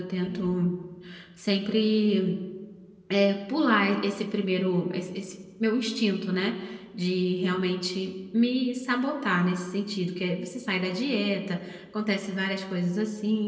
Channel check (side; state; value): both; identical; correlation 1.00